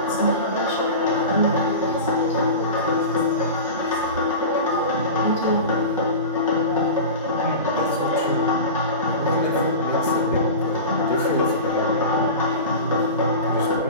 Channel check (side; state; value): both; inverted; correlation -0.30